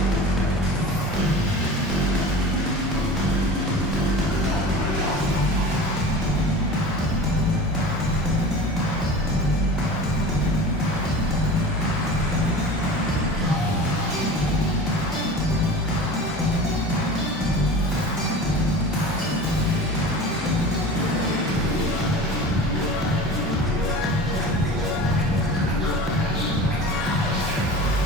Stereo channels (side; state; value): both; normal; correlation 0.36